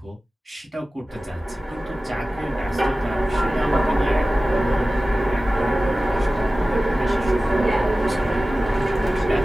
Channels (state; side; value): normal; both; correlation 0.96